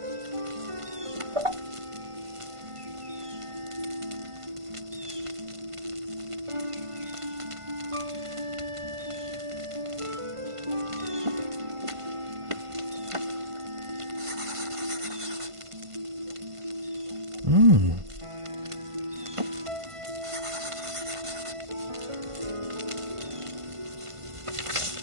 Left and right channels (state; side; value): late; left; 1.5 ms